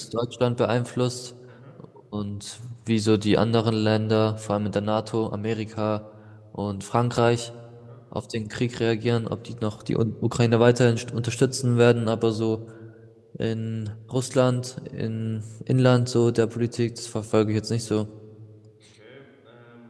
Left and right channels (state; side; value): identical; both; correlation 1.00